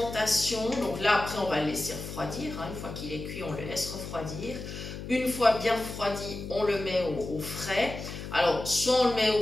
donc là après on va le laisser refroidir, hein, une fois qu'il est cuit on le laisse refroidir. Une fois bien refroidi, on le met au frais. Alors soit on le met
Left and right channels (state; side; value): noise; left; hum, 9 dB below the sound